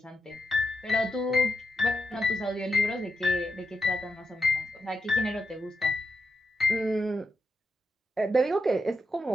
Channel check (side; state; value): both; normal; correlation 0.85